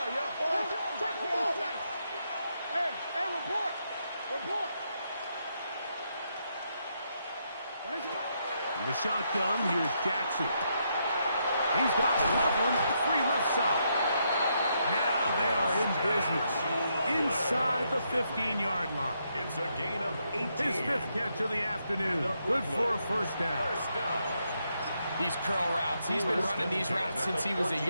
Hey, report! Report! In the shotgun, here's Jackson. He's got Loveland free left side. Now they are in business inside the 15-yard line. It's a gain of 18. His 5th catch of the afternoon. Good for a first down. First down. These curl routes, he's been running these routes since he was a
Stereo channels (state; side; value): inverted; both; correlation -0.78